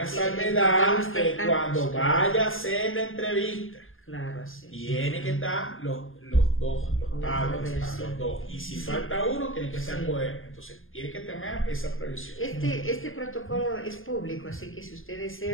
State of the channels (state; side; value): late; right; 0.59 ms